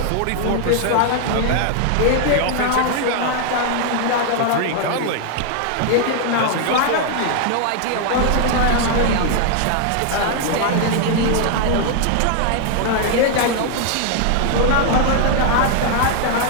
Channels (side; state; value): both; different; correlation 0.00